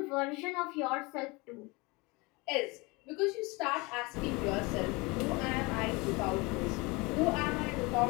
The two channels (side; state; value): right; quieter; 25.8 dB